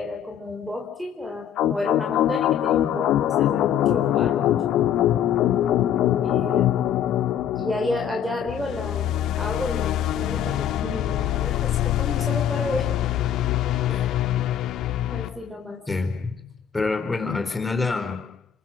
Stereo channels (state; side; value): quieter; right; 8.9 dB